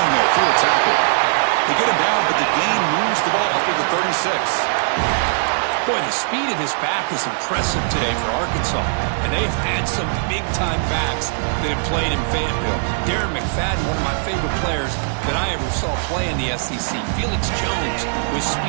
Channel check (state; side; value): silent; left; digital silence